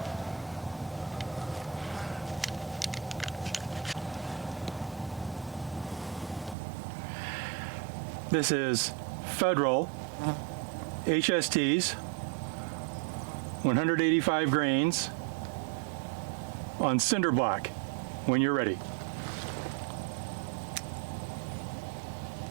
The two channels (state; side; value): drops out; left; at 6.6 s